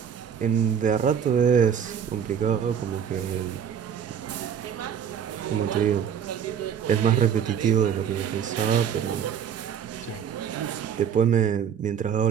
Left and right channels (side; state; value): left; quieter; 8.2 dB